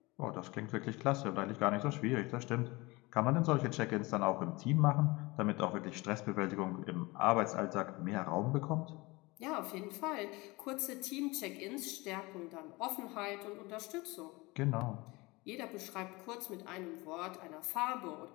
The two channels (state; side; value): quieter; right; 23.3 dB